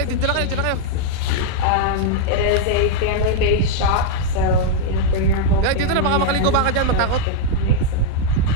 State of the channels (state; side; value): different; both; correlation -0.01